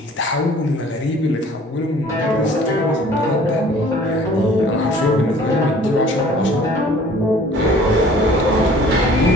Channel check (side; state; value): both; normal; correlation 0.52